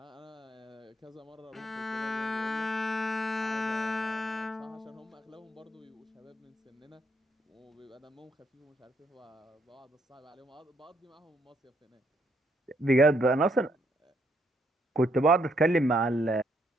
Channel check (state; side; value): normal; both; correlation 0.73